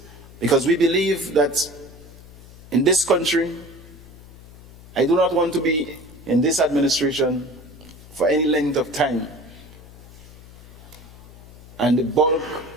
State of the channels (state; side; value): noise; left; hum, 20 dB below the sound